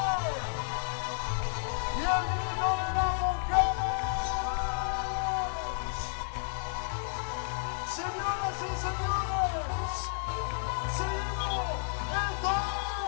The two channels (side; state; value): right; silent; digital silence